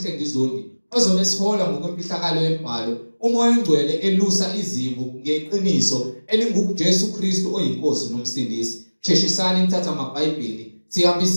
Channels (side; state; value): both; inverted; correlation -1.00